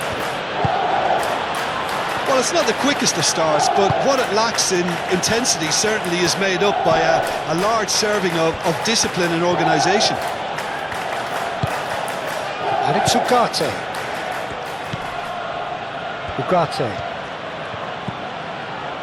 Well, it's not the quickest of starts, but what it lacks in intensity certainly is made up by a large serving of discipline and organisation. And it's Ugarte.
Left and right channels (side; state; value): both; identical; correlation 1.00